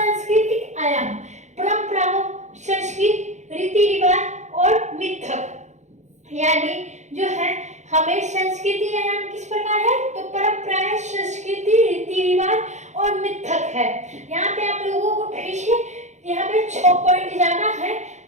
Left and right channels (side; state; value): left; late; 0.34 ms